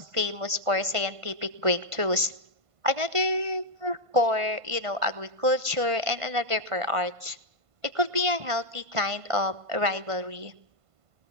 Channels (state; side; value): late; left; 1.5 ms